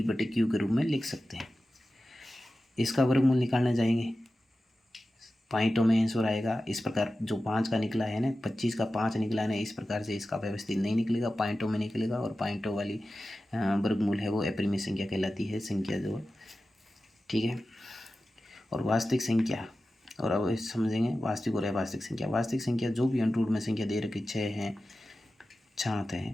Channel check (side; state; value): both; normal; correlation 0.94